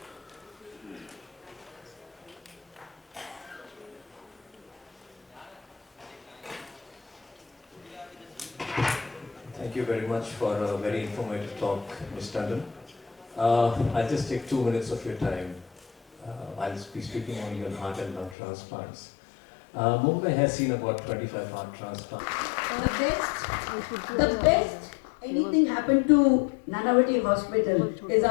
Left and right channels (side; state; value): right; drops out; at 18.4 s